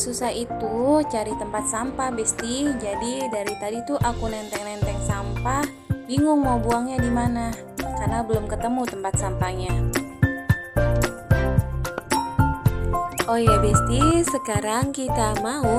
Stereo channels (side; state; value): both; identical; correlation 1.00